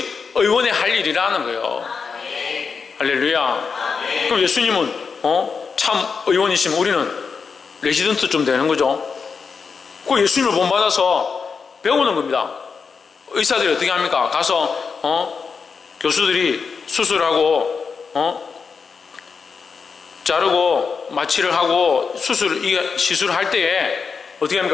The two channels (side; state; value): right; quieter; 5.4 dB